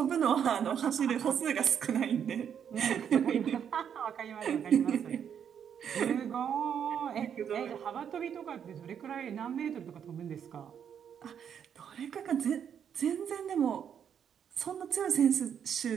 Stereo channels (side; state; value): left; quieter; 8.3 dB